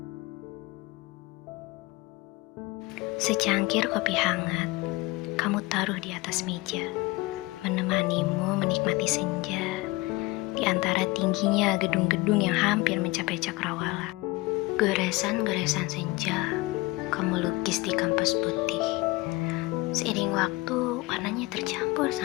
Secangkir kopi hangat, kamu taruh di atas meja, menemanimu menikmati senja di antara tingginya gedung-gedung yang hampir mencapai cakrawala. Goresan-goresan senja kamu lukis di kanvas putih. Seiring waktu, warnanya tercampur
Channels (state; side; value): quieter; right; 21.9 dB